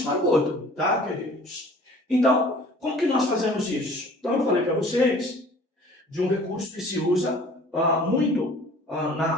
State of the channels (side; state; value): both; normal; correlation 0.49